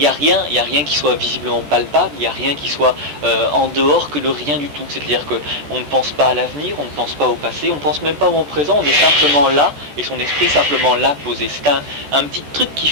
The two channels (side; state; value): left; late; 13 ms